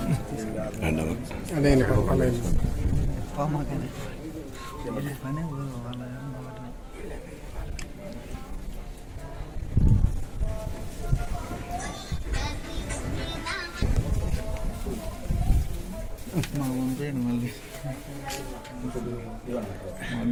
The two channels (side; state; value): both; identical; correlation 1.00